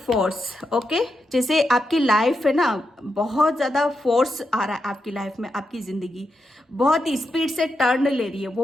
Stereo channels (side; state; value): both; normal; correlation 0.85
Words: force. Okay, जैसे आपकी लाइफ है ना, बहुत ज़्यादा फोर्स आ रहा है आपकी लाइफ में, आपकी ज़िंदगी बहुत ही स्पीड से टर्न ले रही है,